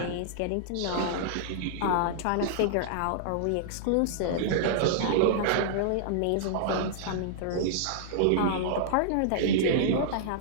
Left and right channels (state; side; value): different; both; correlation -0.02